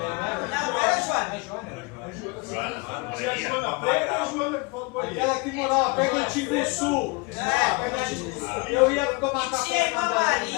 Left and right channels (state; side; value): quieter; right; 27.8 dB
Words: Não era a Joana. Tinha a Joana Preta e a Joana que falou do banheiro. Aquela que morava perto do Timbuçu. Eu ia tomar café. Tinha a